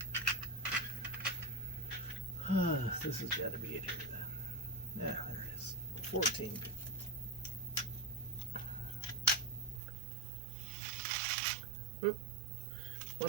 This has got to be it here then. Yeah, there it is. 14. Oop.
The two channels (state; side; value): drops out; left; at 9.8 s